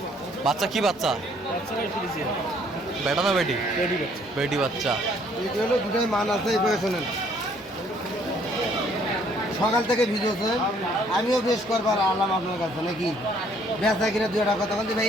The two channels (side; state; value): both; normal; correlation 0.63